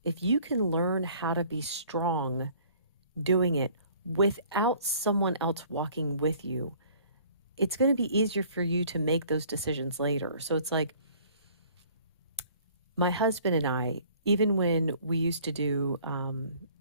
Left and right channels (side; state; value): both; inverted; correlation -0.54